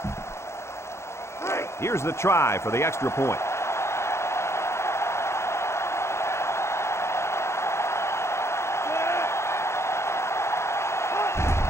Here's the try for the extra point.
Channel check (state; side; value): late; right; 0.13 ms